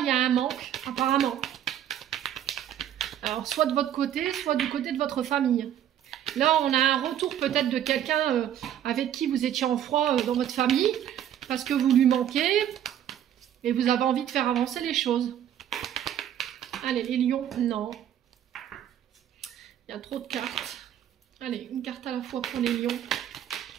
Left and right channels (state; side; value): quieter; left; 10.6 dB